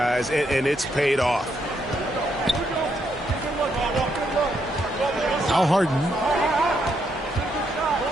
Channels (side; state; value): both; normal; correlation 0.77